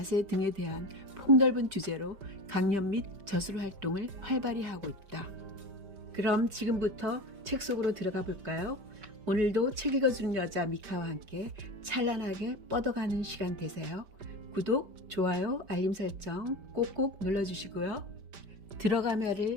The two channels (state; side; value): late; left; 5.1 ms